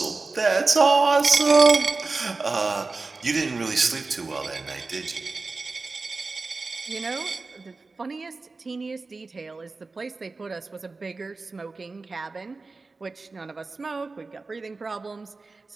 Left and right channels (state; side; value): quieter; left; 3.8 dB